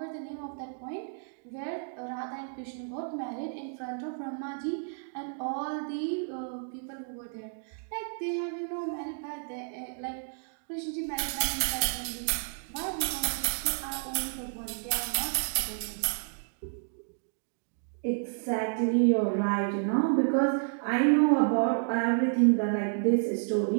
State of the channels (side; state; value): left; silent; digital silence